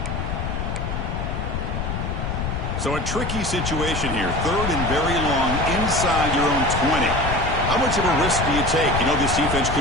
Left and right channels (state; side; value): noise; left; rumble, 3 dB below the sound